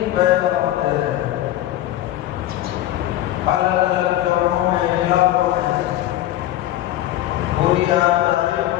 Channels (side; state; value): right; quieter; 13.9 dB